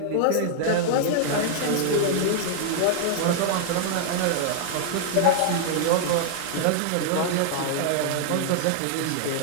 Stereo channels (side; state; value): both; different; correlation -0.01